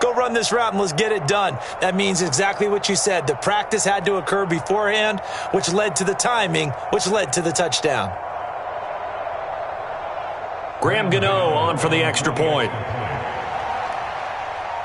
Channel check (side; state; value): both; identical; correlation 1.00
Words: go run this route and let's get it done. That means exactly what you said. The practice had to occur beforehand, which led to the timing, which led to the touchdown. Graham Gano on for the extra point.